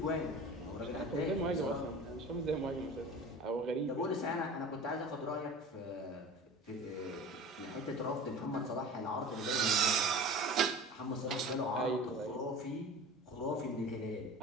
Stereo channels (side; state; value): both; normal; correlation 0.37